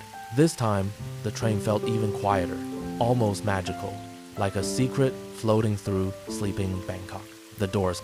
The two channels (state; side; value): identical; both; correlation 1.00